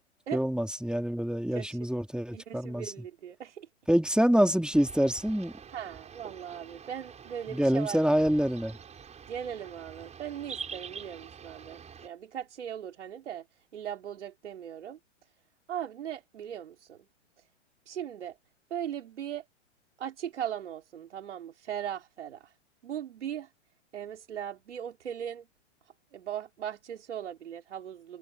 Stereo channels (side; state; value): both; normal; correlation 0.87